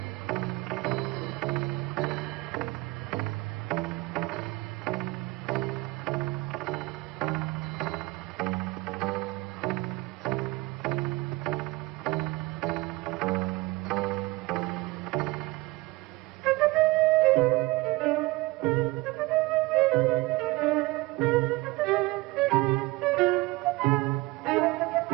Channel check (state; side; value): quieter; left; 21.8 dB